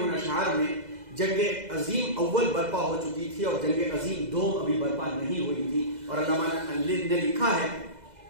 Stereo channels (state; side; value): late; left; 2.0 ms